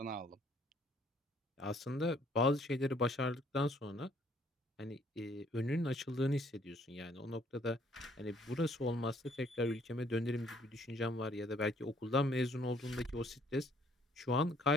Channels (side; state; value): both; normal; correlation 0.63